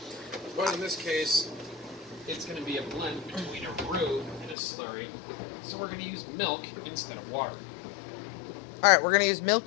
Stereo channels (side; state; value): right; drops out; at 4.5 s